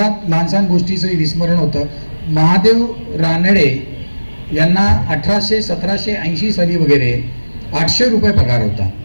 लहानसहान गोष्टीचं विस्मरण होतं. महादेव रानडे यांना 1780 साली वगैरे 800 रुपये पगार होता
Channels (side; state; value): both; inverted; correlation -1.00